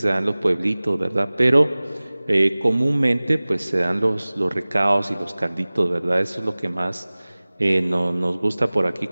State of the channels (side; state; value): both; inverted; correlation -0.99